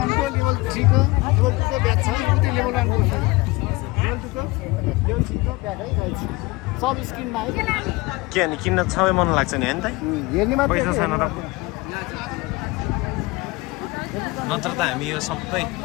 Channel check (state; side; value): quieter; right; 22.8 dB